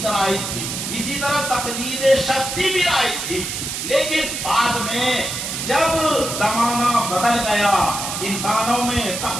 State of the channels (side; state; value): right; noise; hiss, 4 dB below the sound